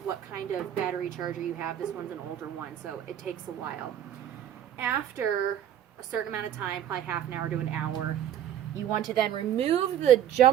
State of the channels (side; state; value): left; quieter; 10.5 dB